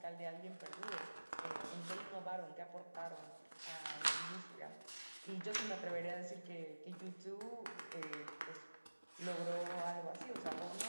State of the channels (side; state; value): both; inverted; correlation -1.00